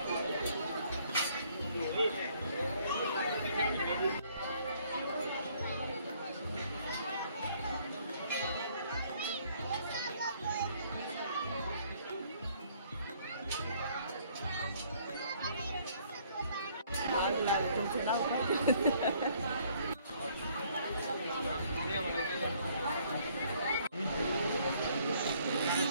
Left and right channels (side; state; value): both; inverted; correlation -0.63